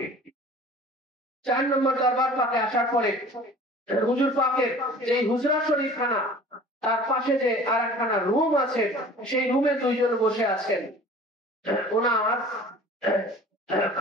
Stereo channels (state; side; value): normal; both; correlation 0.45